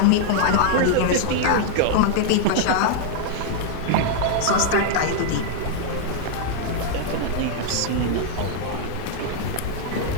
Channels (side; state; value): both; different; correlation -0.01